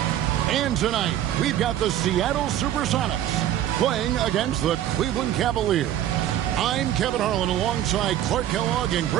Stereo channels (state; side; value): quieter; left; 11.9 dB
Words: And tonight, we've got the Seattle Supersonics playing against the Cleveland Cavaliers. I'm Kevin Harlan alongside Clark Kellogg and